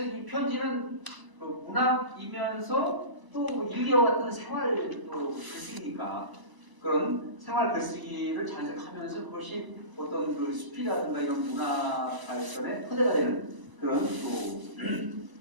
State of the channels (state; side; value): late; left; 1.0 ms